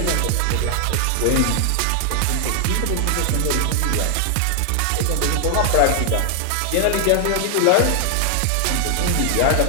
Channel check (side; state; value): both; different; correlation 0.00